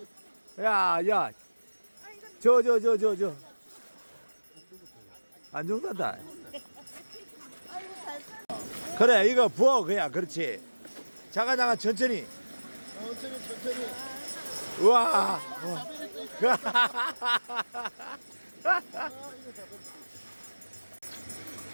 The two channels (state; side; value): inverted; both; correlation -1.00